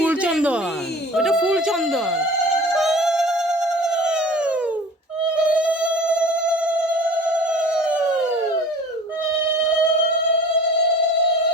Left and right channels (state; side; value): normal; both; correlation 0.42